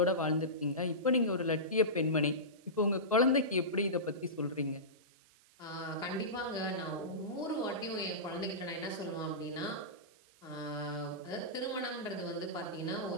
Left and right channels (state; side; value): noise; right; hiss, 28 dB below the sound